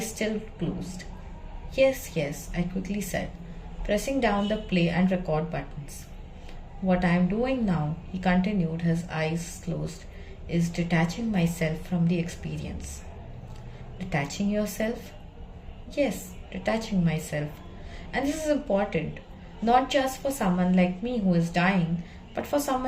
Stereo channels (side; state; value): both; identical; correlation 1.00